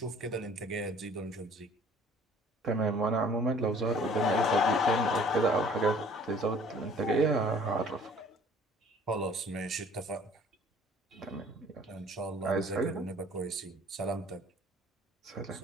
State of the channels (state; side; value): normal; both; correlation 0.52